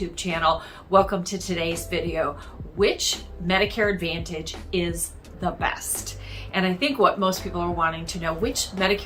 channel. Welcome to today's video. Which Medicare Advantage is the best? And I think what most people are wanting to know, which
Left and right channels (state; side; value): identical; both; correlation 1.00